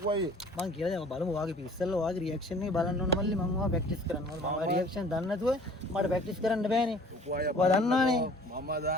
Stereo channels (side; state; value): both; normal; correlation 0.50